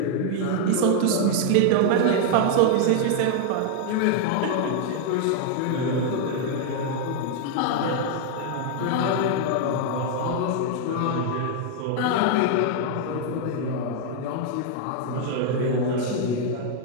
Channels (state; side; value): different; both; correlation 0.00